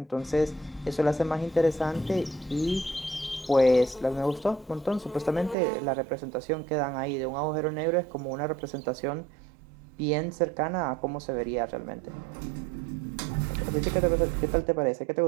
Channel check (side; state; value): left; drops out; at 5.6 s